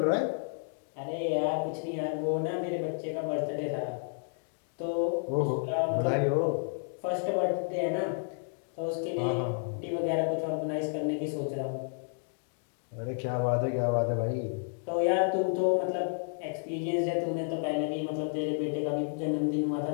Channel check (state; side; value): silent; right; digital silence